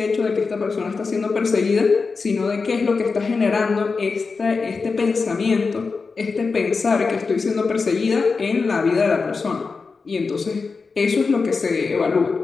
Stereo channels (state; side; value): quieter; right; 4.5 dB